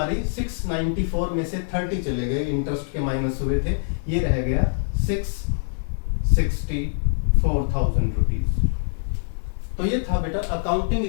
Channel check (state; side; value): silent; right; 63 dB below the other